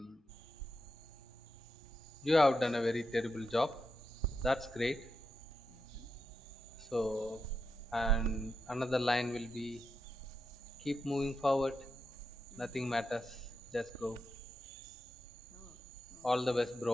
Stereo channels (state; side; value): normal; both; correlation 0.86